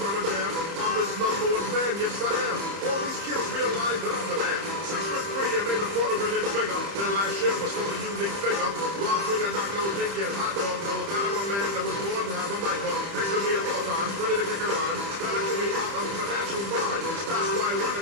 a jam? I'm his #1 fan, yes I am. All these kids realize that I'm the man. 6'3" and made a quarter of an inch bigger. Their last year was still a unique figure. Rob swing a knock, no thinking, hot dog, no. That I'm a man that was born to have a mic on. Next to me at all times, ready to kick around. Starting to me out of a natural bond. That's why I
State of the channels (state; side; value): late; left; 30 ms